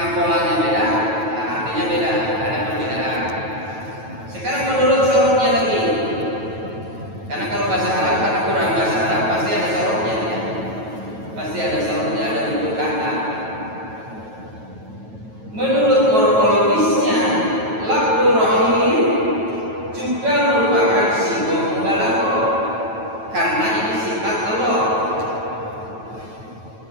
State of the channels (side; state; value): left; late; 9.1 ms